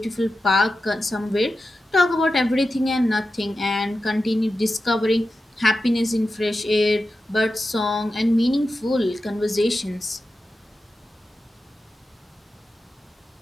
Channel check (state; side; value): normal; both; correlation 0.92